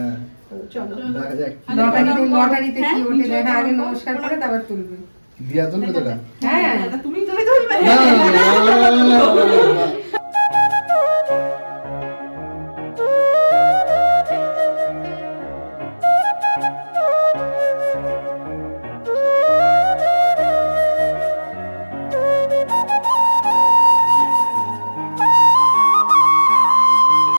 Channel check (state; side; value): inverted; both; correlation -1.00